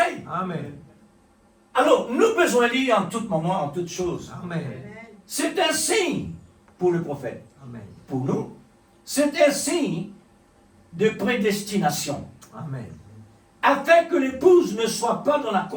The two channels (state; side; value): identical; both; correlation 1.00